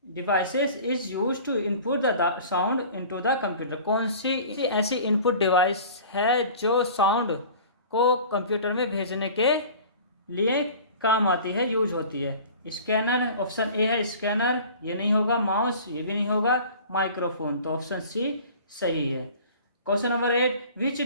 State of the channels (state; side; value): inverted; both; correlation -0.43